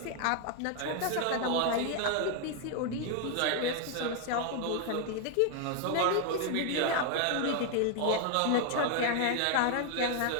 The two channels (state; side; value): different; both; correlation 0.01